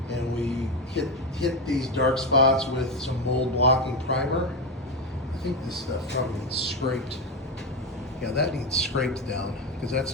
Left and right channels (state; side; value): normal; both; correlation 0.13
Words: and we hit these dark spots with some mold blocking primer. I think this stuff probably needs scraped. Yeah, that needs scraped down because that's